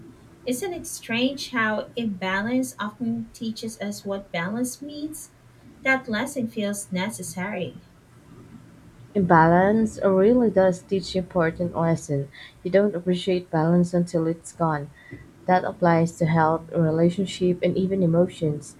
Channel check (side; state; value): both; identical; correlation 1.00